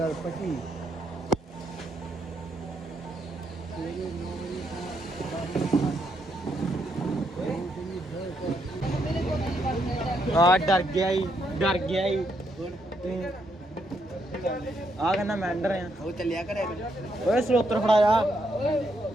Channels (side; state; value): both; normal; correlation 0.77